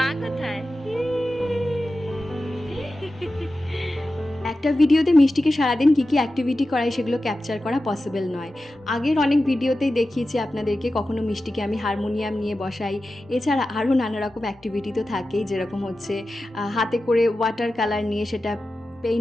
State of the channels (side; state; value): both; normal; correlation 0.93